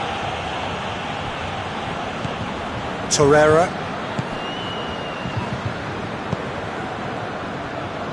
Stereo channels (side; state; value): both; identical; correlation 1.00